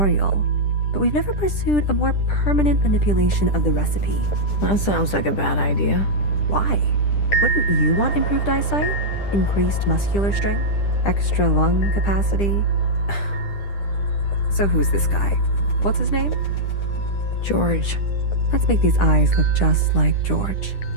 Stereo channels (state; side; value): late; right; 10 ms